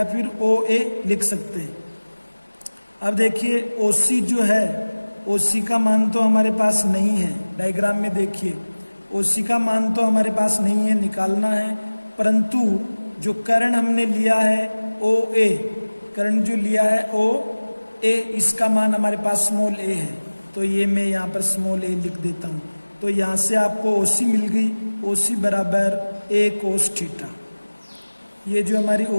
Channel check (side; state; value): both; inverted; correlation -1.00